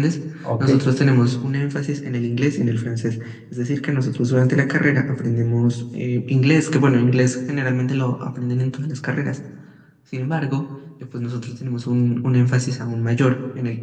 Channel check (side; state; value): both; identical; correlation 1.00